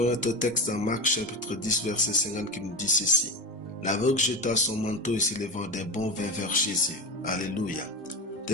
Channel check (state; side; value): normal; both; correlation 0.22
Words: notre texte dans Marc chapitre 10 verset 50 qui nous dit ceci. L'aveugle jeta son manteau et s'élevant d'un bond vint vers Jésus. Alléluia.